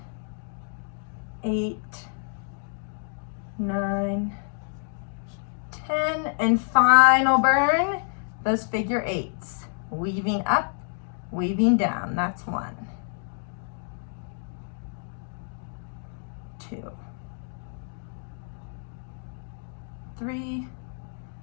8, 9, 10, and final burn, those figure 8s. Weaving up, weaving down. That's 1, 2, 3,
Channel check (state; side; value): silent; right; 59 dB below the other